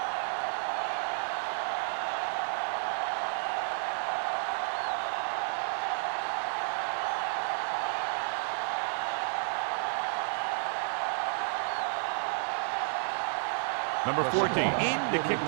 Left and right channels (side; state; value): left; silent; digital silence